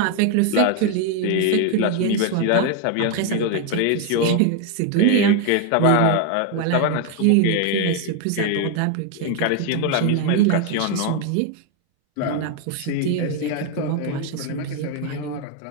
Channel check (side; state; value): both; different; correlation 0.01